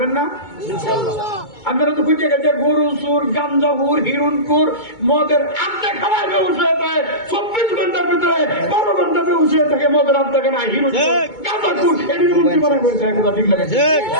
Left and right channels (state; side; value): late; right; 2.2 ms